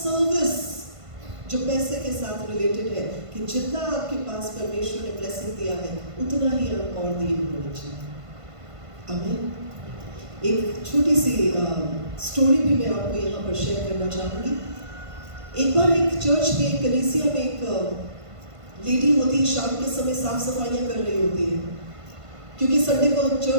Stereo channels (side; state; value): left; late; 1.5 ms